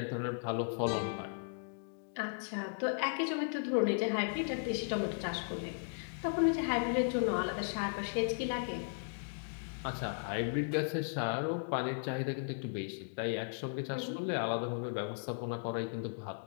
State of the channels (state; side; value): silent; right; digital silence